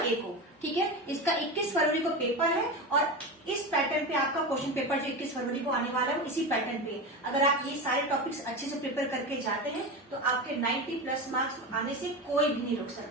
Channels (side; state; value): both; normal; correlation 0.22